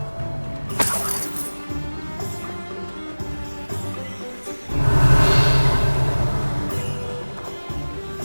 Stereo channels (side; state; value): both; inverted; correlation -1.00